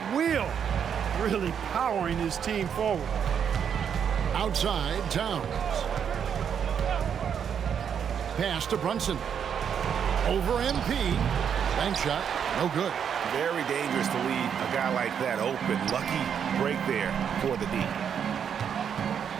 will, really powering his team forward. Outside, Towns. Pass to Brunson. Over MP. Bank shot, no good. Very dangerous to leave a guy like that open. Lucky break there for the D.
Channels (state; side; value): quieter; left; 7.9 dB